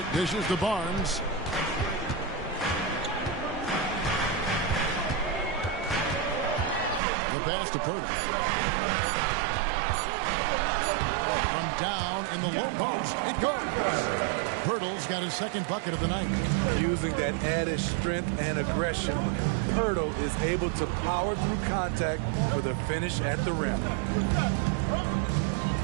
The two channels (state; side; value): drops out; left; at 7.0 s